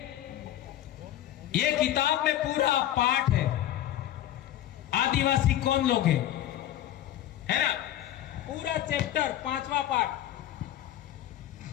ये किताब में पूरा पाठ है, आदिवासी कौन लोग हैं, है ना, पूरा चैप्टर 5वां पाठ।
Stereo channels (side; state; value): right; quieter; 12.6 dB